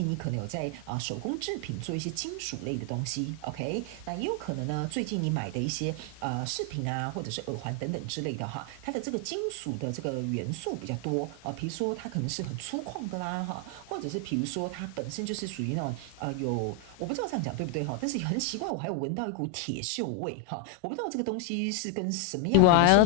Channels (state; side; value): different; both; correlation 0.00